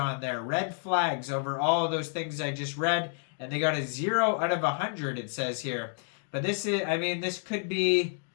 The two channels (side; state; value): right; silent; 58 dB below the other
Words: there, red flags over all of those things I just read. And they got a 0 out of 100, it says here. But this is, I mean, this could be